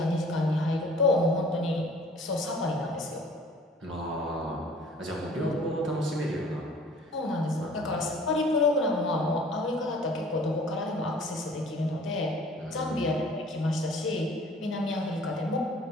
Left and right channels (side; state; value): both; normal; correlation 0.51